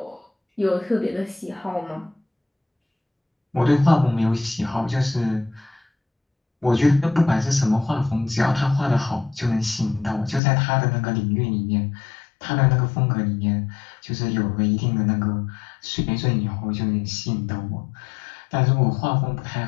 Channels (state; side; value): drops out; right; at 10.4 s